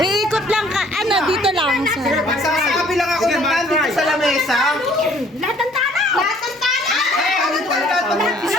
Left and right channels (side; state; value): both; normal; correlation 0.58